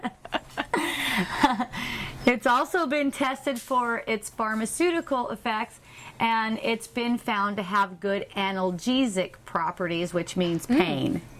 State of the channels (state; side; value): identical; both; correlation 1.00